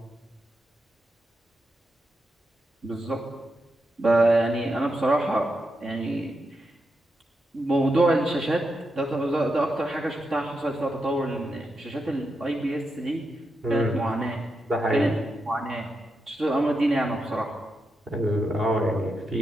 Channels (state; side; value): normal; both; correlation 0.86